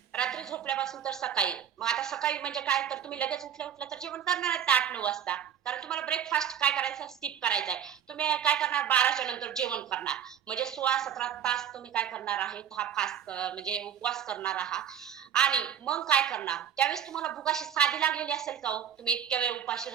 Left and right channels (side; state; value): left; quieter; 8.8 dB